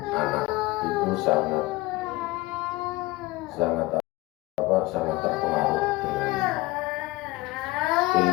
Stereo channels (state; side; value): quieter; right; 20.5 dB